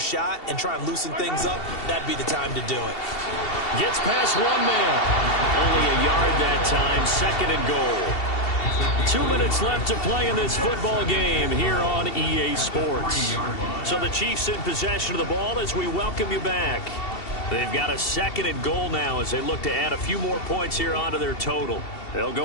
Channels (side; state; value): right; late; 2.7 ms